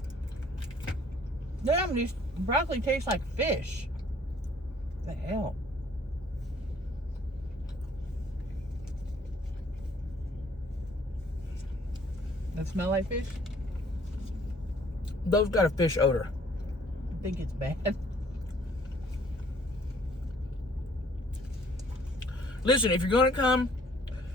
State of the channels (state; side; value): normal; both; correlation 0.59